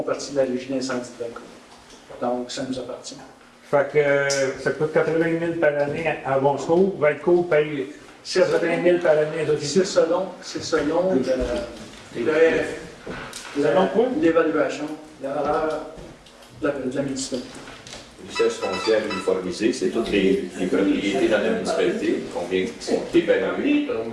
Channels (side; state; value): both; identical; correlation 1.00